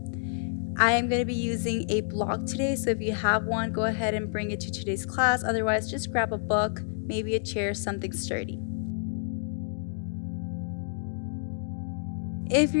I am going to be using a block today, so if you have one, go ahead and bring it to today's class. Otherwise, just grab a book, maybe a chair, something sturdy. If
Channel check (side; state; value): right; silent; digital silence